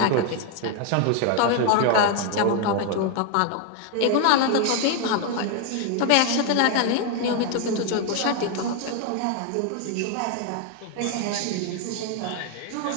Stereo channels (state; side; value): different; both; correlation 0.01